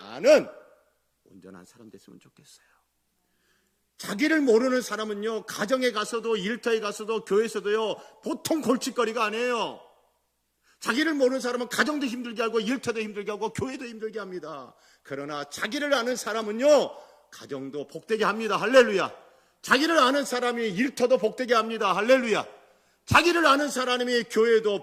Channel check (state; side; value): identical; both; correlation 1.00